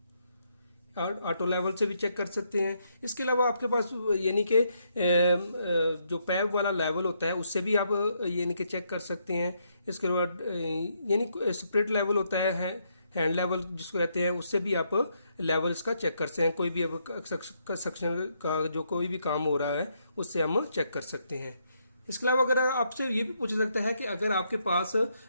और ऑटो लेवल से भी चेक कर सकते हैं। इसके अलावा आपके पास यानी कि जो पैप वाला लेवल होता है उससे भी आप यानी कि चेक कर सकते हैं। इसके बाद यानी स्प्रिट लेवल होता है, हैंड लेवल जिसको कहते हैं, उससे भी आप लेवल इसका चेक कर सकते हैं। कोई भी अब कंस्ट्रक्शन का जो कोई भी काम हो रहा है उससे हम चेक कर सकते हैं। इसके अलावा अगर आपसे ये भी पूछा सकता है कि अगर आपके पास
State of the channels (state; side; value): inverted; both; correlation -0.76